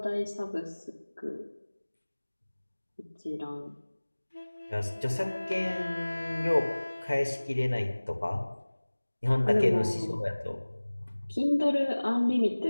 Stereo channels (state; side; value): inverted; both; correlation -1.00